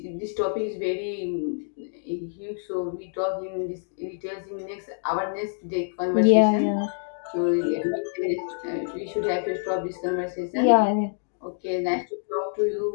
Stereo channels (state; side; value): silent; right; digital silence